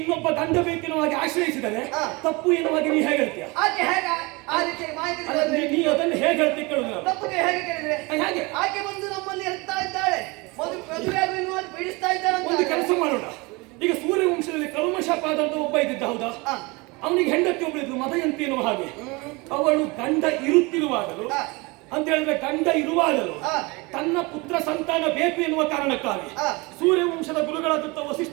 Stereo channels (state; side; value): quieter; left; 25.8 dB